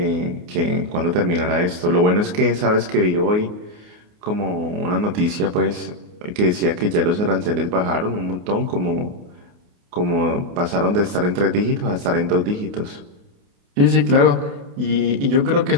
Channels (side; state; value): left; late; 28 ms